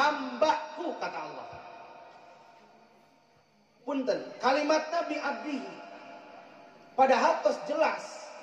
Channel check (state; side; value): identical; both; correlation 1.00